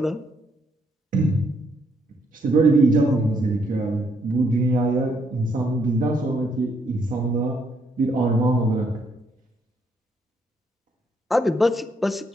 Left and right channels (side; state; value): both; normal; correlation 0.73